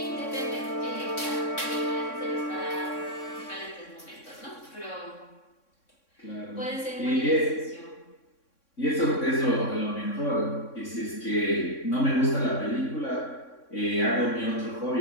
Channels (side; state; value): right; late; 3.6 ms